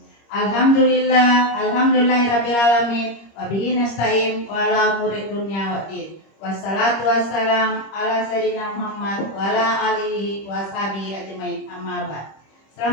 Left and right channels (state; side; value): late; right; 26 ms